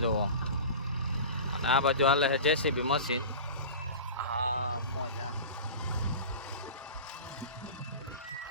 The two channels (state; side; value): inverted; both; correlation -0.34